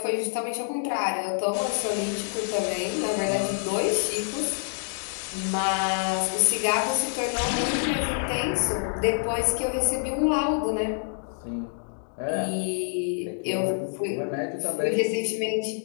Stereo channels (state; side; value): silent; right; digital silence